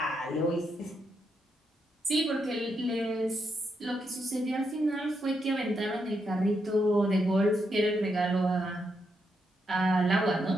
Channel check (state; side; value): normal; both; correlation 0.81